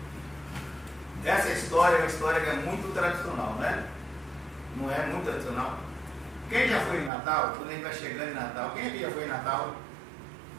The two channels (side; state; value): left; drops out; at 7.1 s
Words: essa história é uma história que é muito tradicional, né? Não é muito tradicional? Quem já foi em Natal? Quando a gente vai chegando em Natal, quem aqui já foi em Natal?